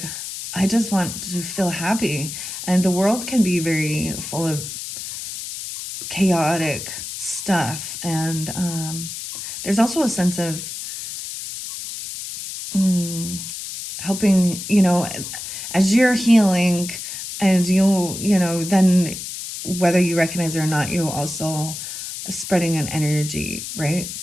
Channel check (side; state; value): left; noise; hiss, 8 dB below the sound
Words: I just want to feel happy. And the world can be very full of chaotic stuff. And there's also a sense of helping, as you're healing and then whether you recognize it or not, you also spreading an energy, right?